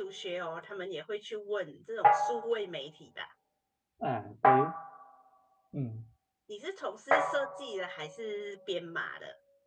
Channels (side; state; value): both; identical; correlation 1.00